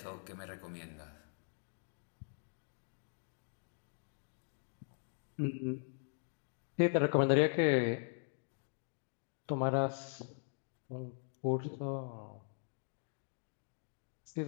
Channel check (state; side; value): silent; right; digital silence